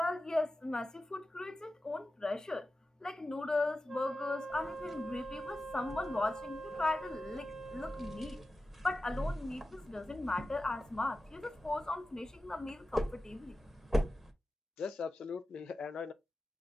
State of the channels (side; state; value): both; normal; correlation 0.93